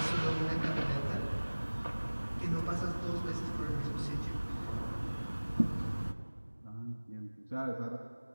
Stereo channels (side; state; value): both; inverted; correlation -1.00